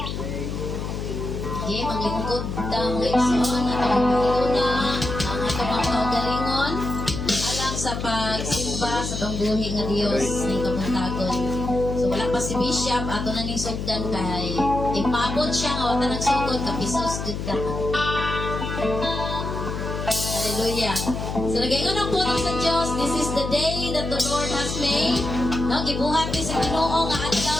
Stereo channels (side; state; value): left; noise; hum, 5 dB below the sound